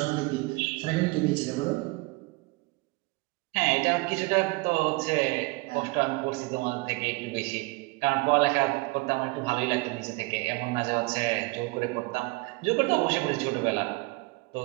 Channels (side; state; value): left; quieter; 25.0 dB